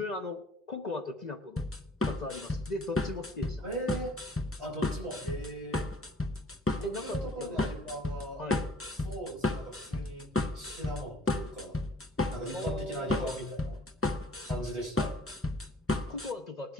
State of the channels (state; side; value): normal; both; correlation 0.54